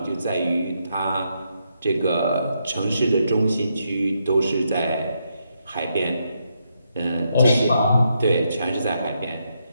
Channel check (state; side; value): inverted; both; correlation -0.80